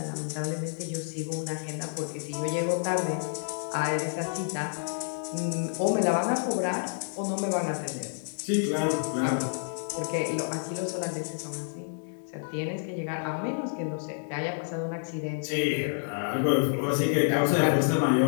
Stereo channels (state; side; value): silent; right; digital silence